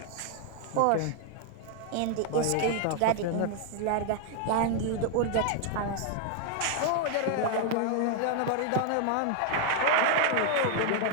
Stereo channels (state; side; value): different; both; correlation 0.00